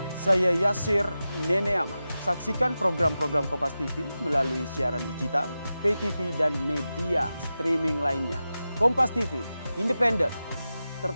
Saya Yasir Neneama. Saksikan program-program Kompas TV melalui siaran digital, pay TV, dan media streaming lainnya. Kompas TV, independen,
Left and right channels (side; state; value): both; inverted; correlation -0.93